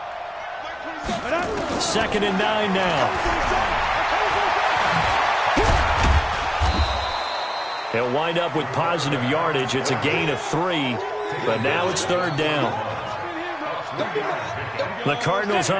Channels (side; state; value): both; identical; correlation 1.00